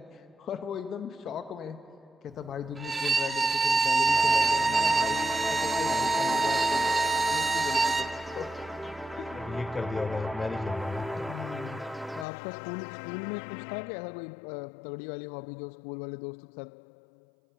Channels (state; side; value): drops out; right; at 12.2 s